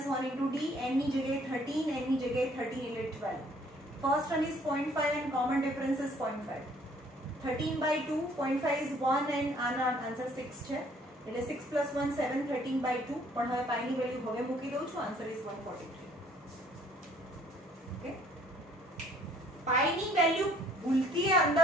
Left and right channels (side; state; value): both; normal; correlation 0.60